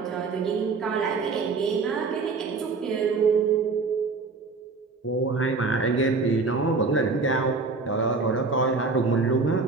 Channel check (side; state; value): left; quieter; 4.2 dB